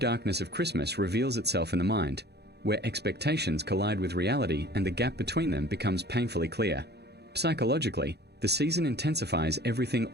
of Christmas reveals itself in the mind, where expectations collide with reality and the gap between them becomes painfully clear. Psychologically, the season intensifies everything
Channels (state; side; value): late; left; 0.48 ms